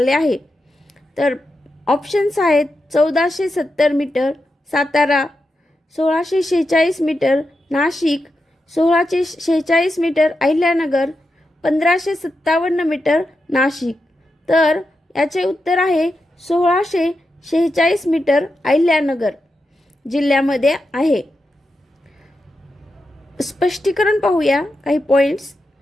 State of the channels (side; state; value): both; normal; correlation 0.88